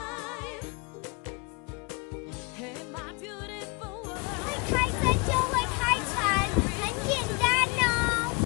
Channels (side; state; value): right; quieter; 28.1 dB